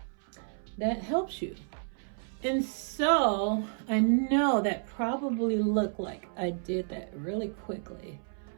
that helps you. And so I know that probably looked like I did that really quickly,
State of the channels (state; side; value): silent; left; 57 dB below the other